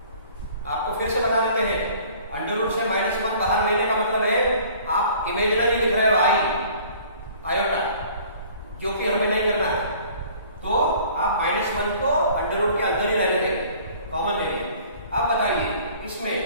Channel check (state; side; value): inverted; both; correlation -0.51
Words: आपको फिर से बता देते हैं, अंडर रूट से -1 बाहर लेने का मतलब है आप इमेजिनरी लिख रहे हो आयोटा, जो कि हमें नहीं करना है। तो आप -1 को अंडर रूट के अंदर ही रहने देंगे, कॉमन ले लेंगे। अब बताइए इसमें